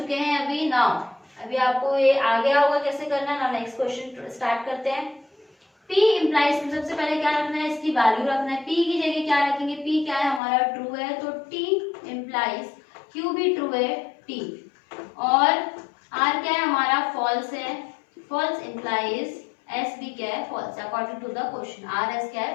हैं अभी। नाउ अभी आपको ये आ गया होगा कैसे करना। नाउ नेक्स्ट क्वेश्चन स्टार्ट करते हैं। P इम्प्लाइज, सबसे पहले क्या रखना है, इसकी वैल्यू रखना है। P की जगह क्या रखेंगे, P क्या है हमारा ट्रू है तो T इम्प्लाइज, Q भी ट्रू है T, और R क्या है हमारा फॉल्स है, फॉल्स इम्प्लाइज S भी क्या है false, according to the question R S क्या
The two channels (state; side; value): drops out; right; at 10.4 s